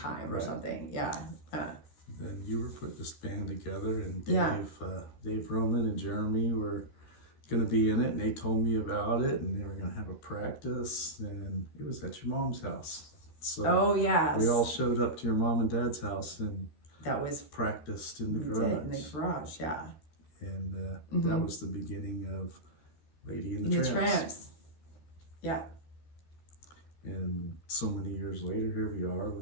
or something. Yeah. Then you were putting this band together, and Dave Roman and Jeremy were going to be in it, and they told me about it, and they were going to have a practice, and it was at your mom's house. So we all showed up to your mom and dad's house, and that was practiced in the garage. In the garage, yeah. And that was the beginning of Lady and the Tramps. Yeah. And so many years later, here we are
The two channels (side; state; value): right; late; 13 ms